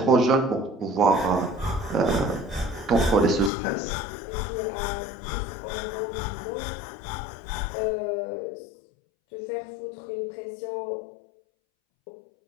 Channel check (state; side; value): drops out; right; at 3.5 s